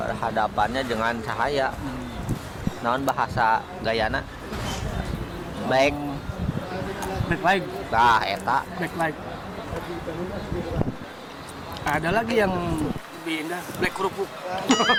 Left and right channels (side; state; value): both; identical; correlation 1.00